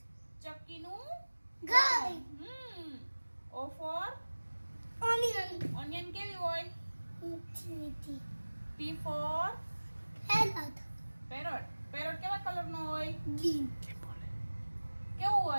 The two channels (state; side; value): inverted; both; correlation -1.00